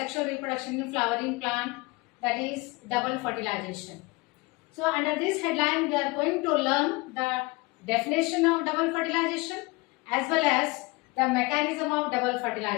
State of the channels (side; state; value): right; quieter; 24.0 dB